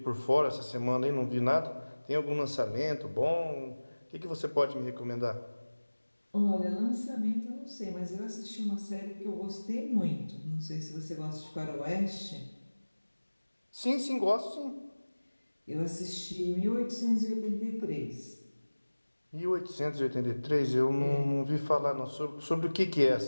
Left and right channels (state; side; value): inverted; both; correlation -1.00